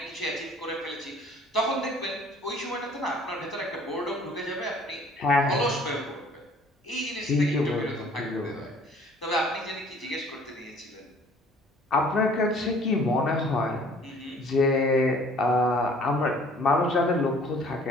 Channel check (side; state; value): both; normal; correlation 0.54